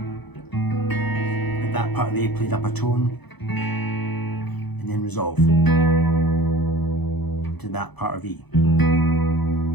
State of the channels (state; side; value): late; right; 0.99 ms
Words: At that part of the A played up a tone, and then resolve to that part of E. A